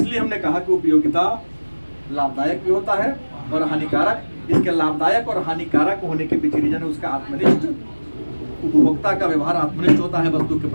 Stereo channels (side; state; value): both; inverted; correlation -1.00